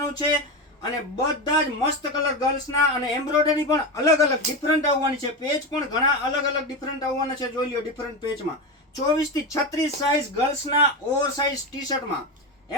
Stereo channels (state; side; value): normal; both; correlation 0.17